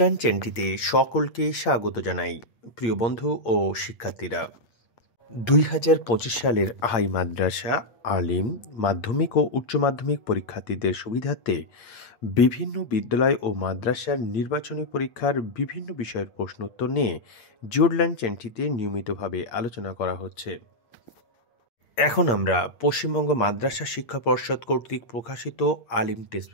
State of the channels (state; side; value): late; right; 8.5 ms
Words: চ্যানেলটিতে সকলকে স্বাগত জানাই। প্রিয় বন্ধু ও শিক্ষার্থীরা, 2025 সালের হাই মাদ্রাসা, আলিম, মাধ্যমিক ও উচ্চ মাধ্যমিক পরীক্ষার্থীদের সুবিধার্থে বিভিন্ন বিদ্যালয় ও মাদ্রাসার নির্বাচনী পরীক্ষার বিভিন্ন বিষয়ের প্রশ্নোত্তর নিয়ে জিওরল্যান্ড চ্যানেলটিতে নিয়মিতভাবে আলোচনা করা হচ্ছে। এখন আমরা পশ্চিমবঙ্গ মাদ্রাসা শিক্ষা পর্ষদ কর্তৃক প্রকাশিত আলিম টেস্ট